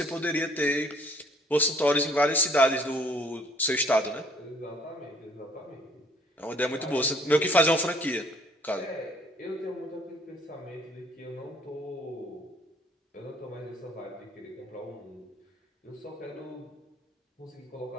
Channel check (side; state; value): both; normal; correlation 0.59